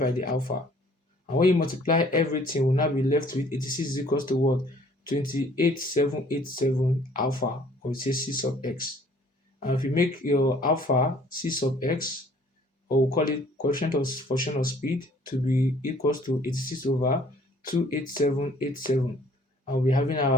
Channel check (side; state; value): both; normal; correlation 0.57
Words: the alpha. And when you multiply everything, we'll now be left with 86 is equals to what? 28787 alpha, or it says C sub x. And if you make your alpha C sub x, or we'll call it coefficient of function of speed, to be equals to 86 over 28787. And we'll be having